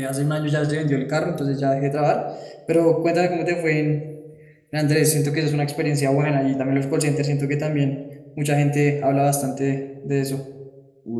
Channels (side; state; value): both; identical; correlation 1.00